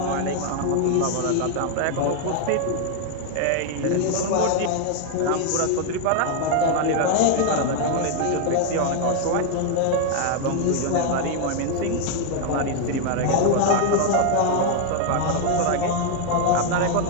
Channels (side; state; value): both; different; correlation 0.00